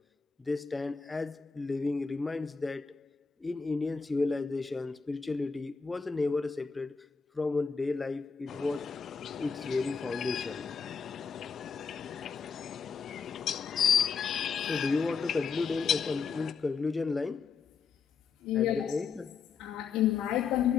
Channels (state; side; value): quieter; right; 5.6 dB